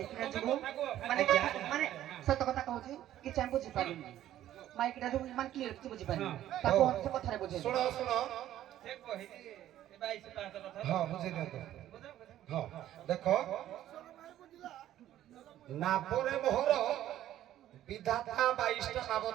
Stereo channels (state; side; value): quieter; left; 12.6 dB